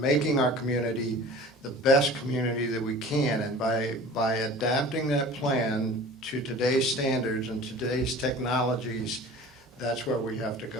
our community the best community that we can, and by adapting that plan to today's standards and today's technologies, that's where we have to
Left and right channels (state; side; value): normal; both; correlation 0.41